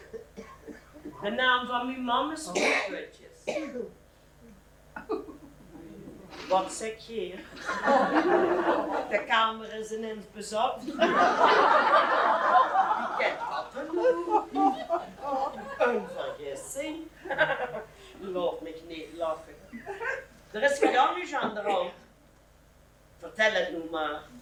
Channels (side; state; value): both; identical; correlation 1.00